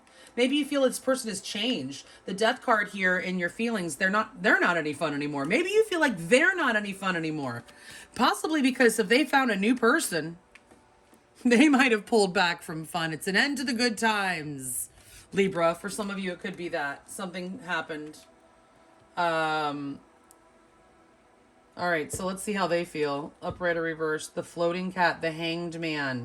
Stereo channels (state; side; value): identical; both; correlation 1.00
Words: Maybe you feel this person has changed. The death card here in your feelings, they're not any fun anymore. Maybe you feel like they're not any fun anymore. Possibly because if they found a new person, they might have pulled back from fun. It's an end to the good times, Libra. For some of you, it could be that. Something happened. All right, so let's see how they feel. Upright or reverse. The floating cat, the hanged